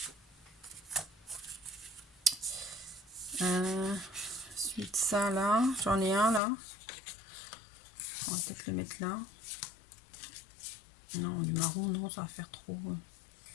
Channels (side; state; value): right; drops out; at 6.4 s